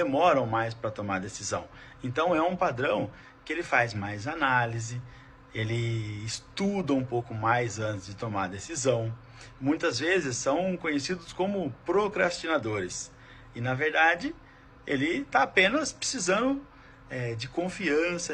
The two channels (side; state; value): both; identical; correlation 1.00